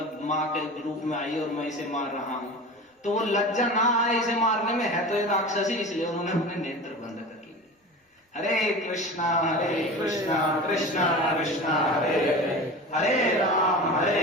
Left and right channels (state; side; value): normal; both; correlation 0.33